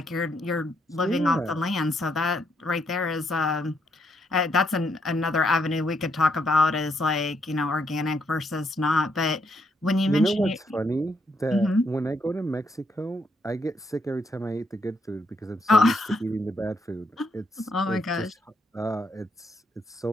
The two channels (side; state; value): both; normal; correlation 0.75